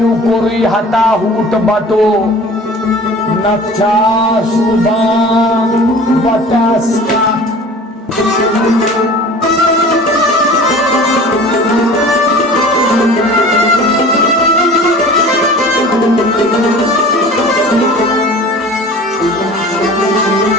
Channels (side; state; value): both; normal; correlation 0.42